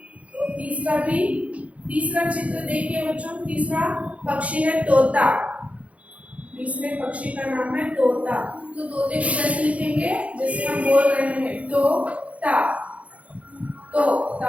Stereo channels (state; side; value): late; left; 0.065 ms